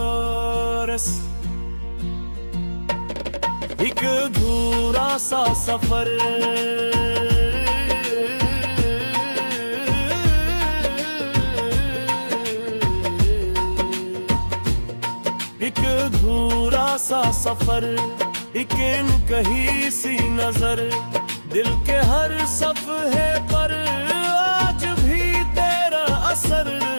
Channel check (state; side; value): inverted; both; correlation -1.00